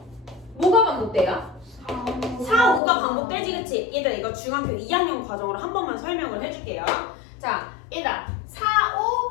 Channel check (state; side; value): drops out; right; at 2.8 s